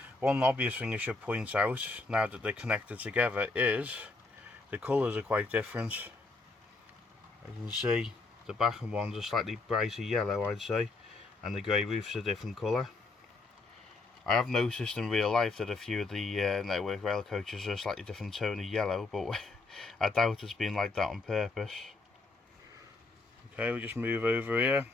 One obvious thing I should point out, now that they're connected together, is the colours are quite different. You can see the Bachmann ones are slightly brighter yellow, I'd say, and the grey roof's a different colour. I have noticed in real life that a few of the network rail coaches are a slightly different tone of yellow, but I doubt it's been like that on purpose. Okay, we'll just move over here.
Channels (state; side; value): quieter; right; 3.5 dB